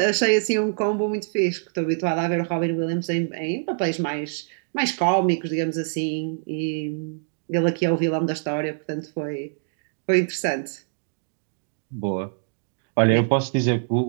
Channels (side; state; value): left; silent; digital silence